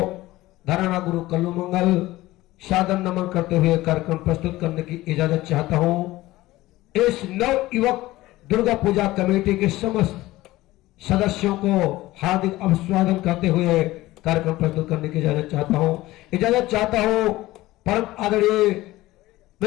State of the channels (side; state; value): right; quieter; 17.7 dB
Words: धराना गुरु कल्लू मंगल सादर नमन करते हुए कार्यक्रम प्रस्तुत करने की इजाजत चाहता हूं। इस नव युवक दुर्गा पूजा कमेटी के समस्त सदस्यों को हार्दिक अभिवादन करते हुए कार्यक्रम प्रस्तुत करने की इजाजत चाहता हूं। परम आदरणीय